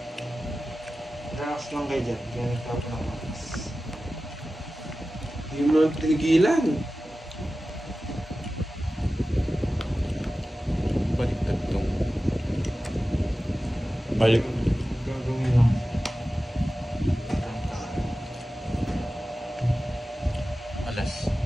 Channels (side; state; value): both; normal; correlation 0.95